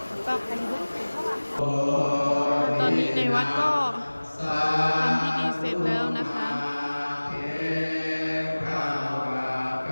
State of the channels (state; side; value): inverted; both; correlation -1.00